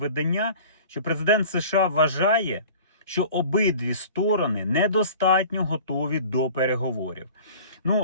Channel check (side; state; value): both; inverted; correlation -0.43